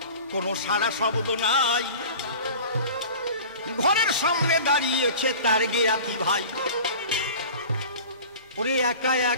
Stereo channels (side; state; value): both; inverted; correlation -0.39